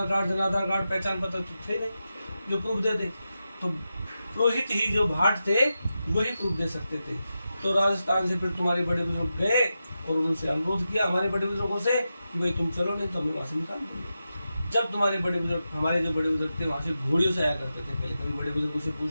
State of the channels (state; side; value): inverted; both; correlation -0.90